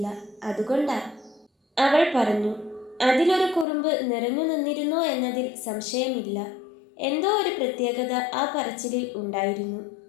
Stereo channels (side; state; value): right; drops out; at 3.7 s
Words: അതുകൊണ്ടാ, അവൾ പറഞ്ഞു. അതിലൊരു കുറുമ്പ് നിറഞ്ഞു നിന്നിരുന്നോ എന്നതിൽ സംശയമില്ല. എന്തോ ഒരു പ്രത്യേകത ആ പറച്ചിലിൽ ഉണ്ടായിരുന്നു.